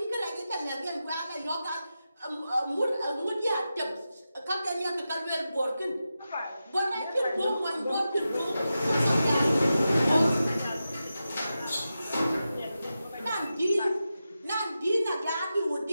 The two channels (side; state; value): both; inverted; correlation -0.91